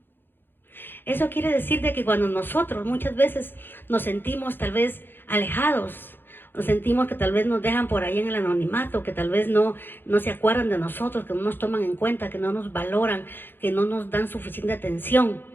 Eso quiere decir de que cuando nosotros muchas veces nos sentimos tal vez alejados, nos sentimos que tal vez nos dejan por ahí en el anonimato, que tal vez no se acuerdan de nosotros, que no nos toman en cuenta, que no nos valoran, que no nos dan suficiente atención.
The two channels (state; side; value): late; right; 0.099 ms